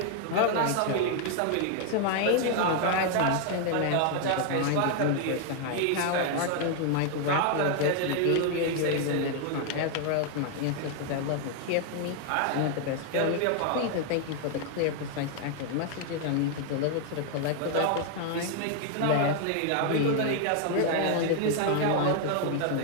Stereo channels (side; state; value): both; different; correlation 0.00